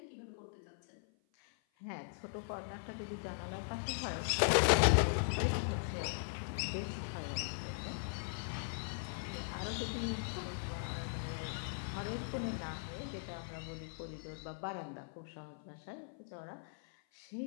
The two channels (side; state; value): right; silent; 51 dB below the other